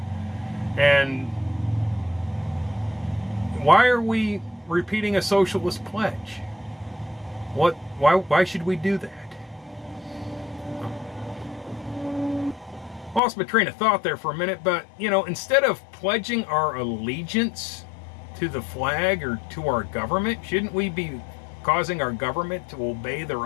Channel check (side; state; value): right; drops out; at 13.2 s